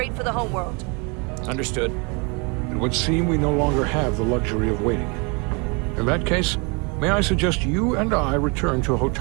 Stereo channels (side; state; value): left; quieter; 31.2 dB